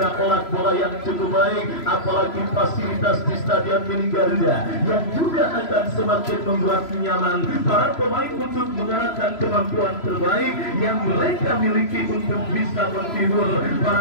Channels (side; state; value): right; late; 3.0 ms